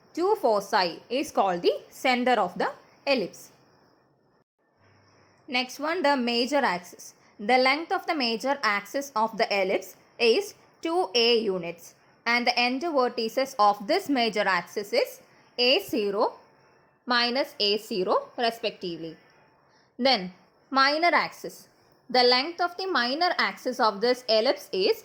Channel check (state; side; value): identical; both; correlation 1.00